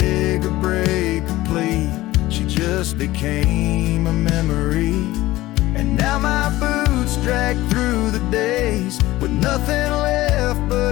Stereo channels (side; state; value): right; quieter; 17.4 dB